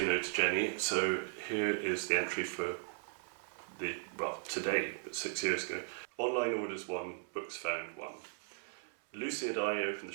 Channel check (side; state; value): left; silent; 53 dB below the other